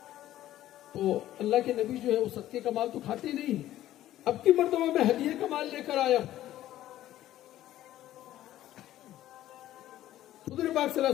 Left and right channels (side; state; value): right; quieter; 13.6 dB